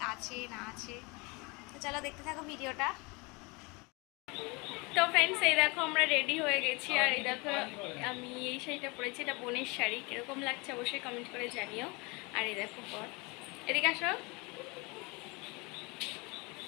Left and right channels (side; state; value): right; quieter; 27.7 dB